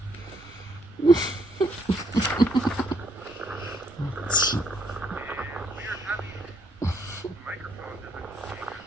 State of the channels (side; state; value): right; noise; rumble, 29 dB below the sound